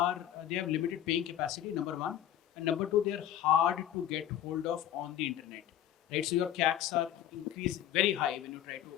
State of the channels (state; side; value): quieter; right; 11.2 dB